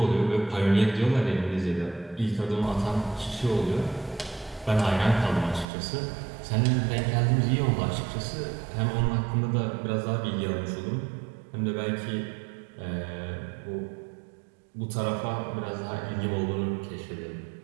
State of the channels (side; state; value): left; drops out; at 5.7 s